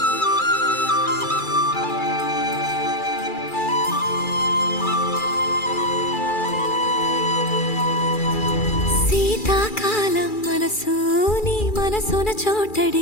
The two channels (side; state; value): right; late; 2.4 ms